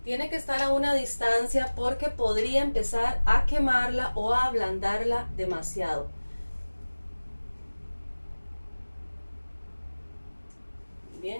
Tiene que estar a una distancia porque podría empezar a quemarla o a ablandarla demasiado.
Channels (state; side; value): inverted; both; correlation -1.00